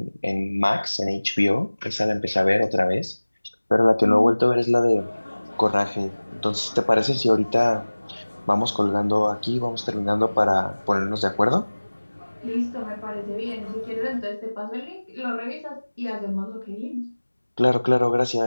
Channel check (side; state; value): both; inverted; correlation -1.00